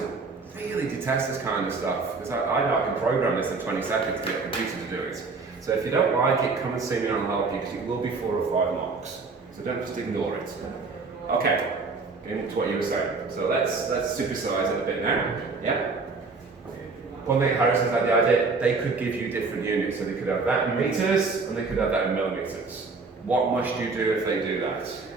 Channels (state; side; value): quieter; left; 4.2 dB